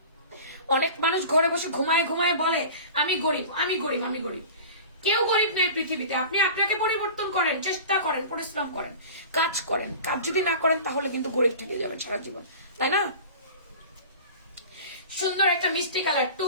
অনেক মানুষ ঘরে বসে ঘুমায় ঘুমায় বলে আমি গরিব, আমি গরিব, আমি গরিব। কেউ গরিব নেই পৃথিবীতে। আপনি আপনাকে পরিবর্তন করেন, চেষ্টা করেন, পরিশ্রম করেন, কাজ করেন। কাজ যদি না করেন তাহলে কিন্তু গরিব থেকে যাবেন সারা জীবন, তাই না? সুন্দর একটা মিষ্টি কালার 2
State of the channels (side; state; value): both; inverted; correlation -0.37